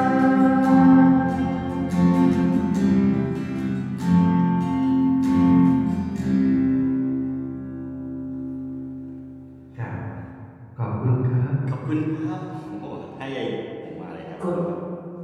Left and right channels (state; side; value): identical; both; correlation 1.00